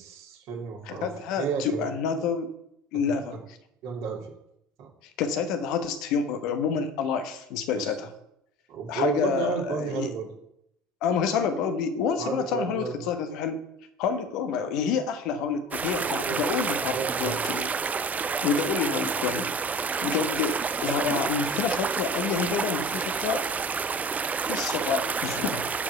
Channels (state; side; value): normal; both; correlation 0.38